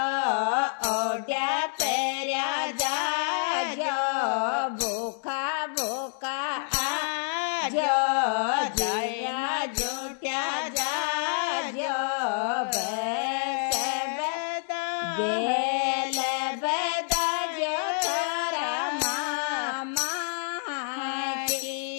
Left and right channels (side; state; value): right; silent; digital silence